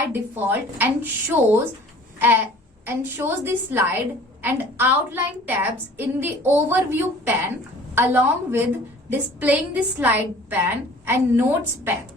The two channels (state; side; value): normal; both; correlation 0.49